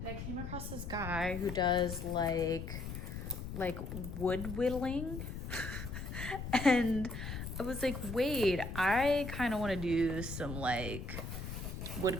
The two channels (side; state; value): left; noise; rumble, 7 dB below the sound